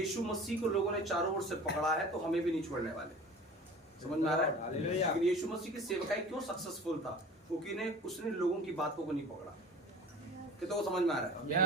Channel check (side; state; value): both; normal; correlation 0.41